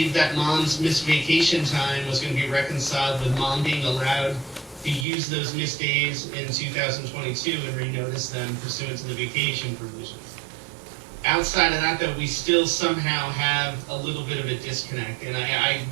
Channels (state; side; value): drops out; left; at 5.1 s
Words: that mom's missed vacation time was going to be reconciled with mom being allowed to use those missed days in 2022 and renotice them pursuant to the vacation provisions. Outside of that, though, we still somehow have a little bit of a disconnect, and I